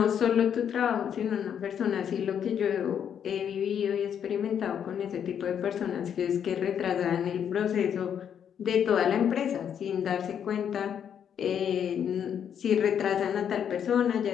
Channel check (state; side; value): quieter; right; 8.5 dB